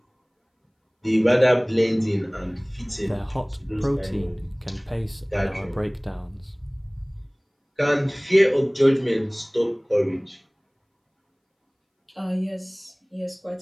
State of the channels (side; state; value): both; identical; correlation 1.00